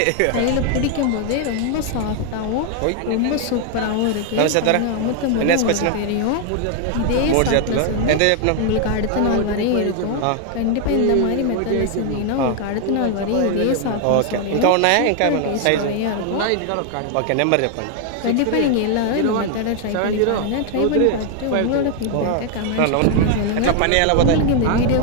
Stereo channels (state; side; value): different; both; correlation 0.00